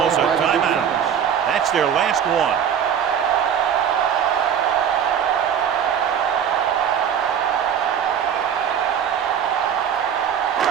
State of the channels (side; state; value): left; quieter; 8.4 dB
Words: a timeout. That's their last one.